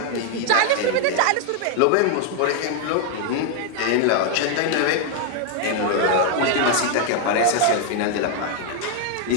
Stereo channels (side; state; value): both; different; correlation 0.00